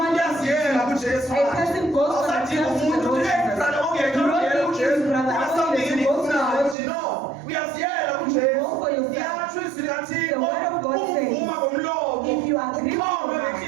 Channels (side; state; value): left; drops out; at 6.8 s